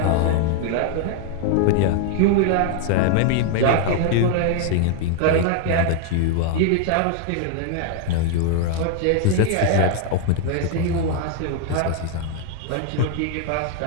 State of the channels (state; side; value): different; both; correlation 0.00